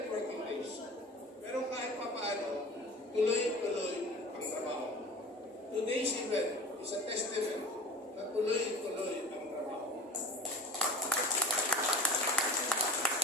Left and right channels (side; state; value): both; normal; correlation 0.38